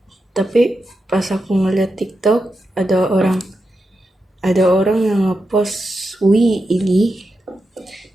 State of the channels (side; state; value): both; normal; correlation 0.88